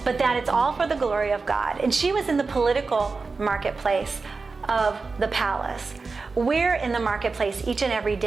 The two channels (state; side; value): quieter; left; 4.2 dB